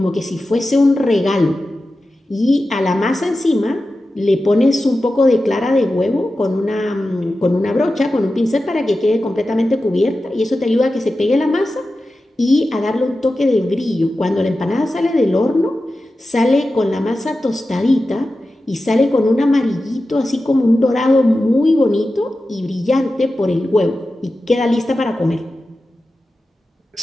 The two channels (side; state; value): both; normal; correlation 0.93